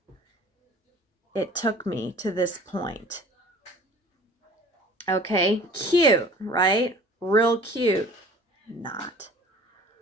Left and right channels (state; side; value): normal; both; correlation 0.47